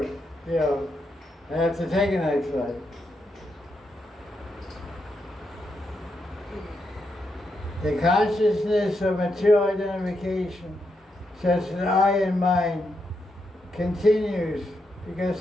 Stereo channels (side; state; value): both; normal; correlation 0.82